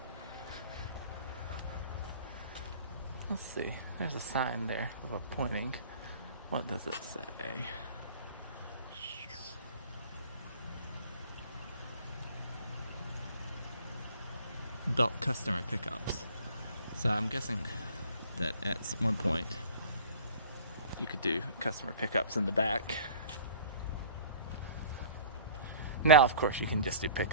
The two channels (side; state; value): both; inverted; correlation -0.47